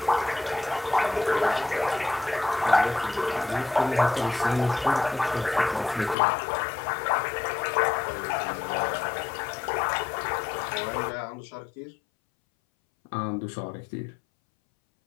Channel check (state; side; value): drops out; right; at 6.2 s